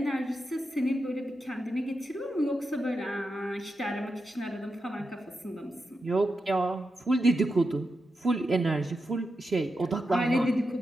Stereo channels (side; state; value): both; normal; correlation 0.88